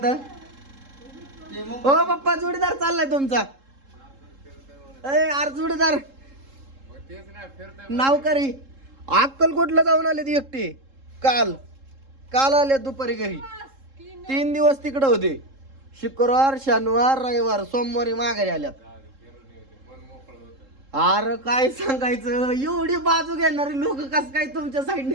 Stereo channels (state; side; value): late; left; 3.7 ms